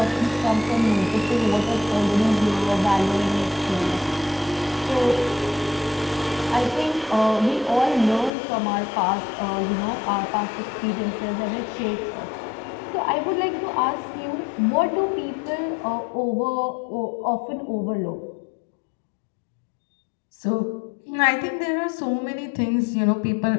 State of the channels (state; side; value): drops out; right; at 8.3 s